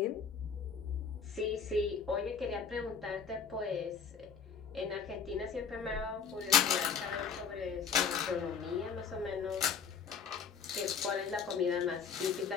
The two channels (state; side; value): quieter; right; 6.3 dB